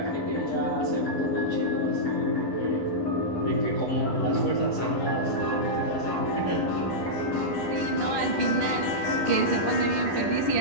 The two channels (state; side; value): late; right; 9.9 ms